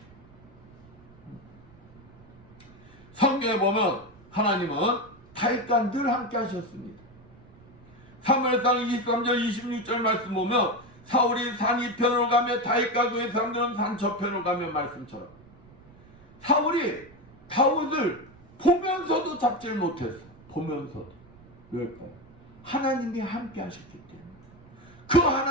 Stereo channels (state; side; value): noise; right; rumble, 24 dB below the sound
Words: 성경에 보면 하나님은 다윗과 늘 함께 하셨습니다. 사무엘상 23절 26절 말씀 보면 사울이 산 이편으로 가며 다윗과 그의 사람들은 산 저편으로 가며 말씀처럼 사울이 다윗을 보면서도 잡질 못했어. 보면서도. 왜일까요? 하나님이 함께 하셨기 때문에. 그